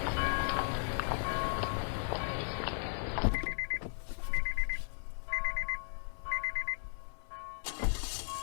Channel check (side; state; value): right; silent; 54 dB below the other